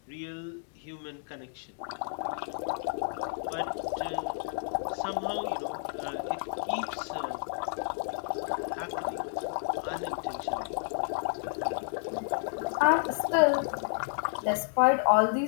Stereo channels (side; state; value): right; silent; digital silence